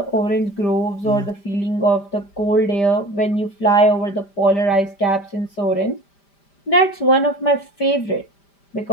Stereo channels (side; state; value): right; late; 5.0 ms